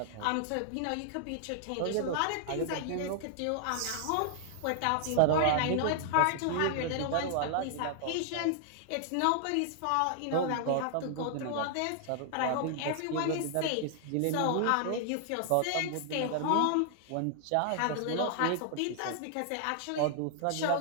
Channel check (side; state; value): both; different; correlation 0.00